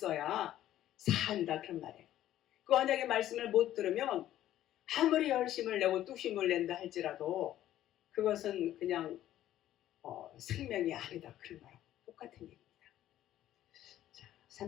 산다 그런 말이에요. 그 언약의 말씀을 못 들으면 아무리 열심을 내고 뚝심을 낸다 할지라도 그것은 그냥 생명이 아니다 그런 말하고 똑같은 얘기입니다. 자,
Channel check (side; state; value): right; quieter; 12.8 dB